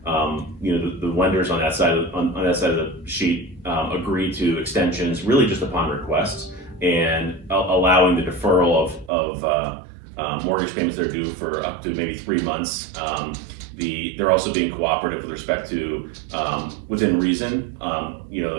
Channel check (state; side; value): drops out; left; at 9.1 s